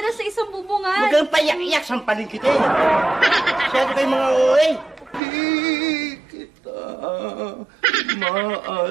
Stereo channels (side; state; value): left; drops out; at 5.2 s